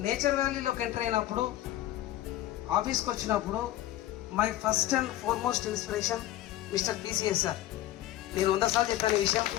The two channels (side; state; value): right; quieter; 14.2 dB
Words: నేచర్ వ్యాలీలోకి ఎంటర్ అయినప్పుడు, ఆఫీస్కి వచ్చినప్పుడు my first and foremost inspiration mister PCS sir. నేను 100 సార్లు చెప్పాను విషయం,